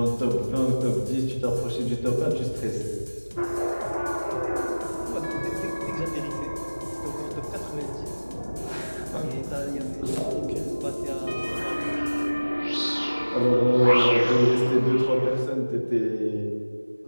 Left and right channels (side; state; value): both; inverted; correlation -1.00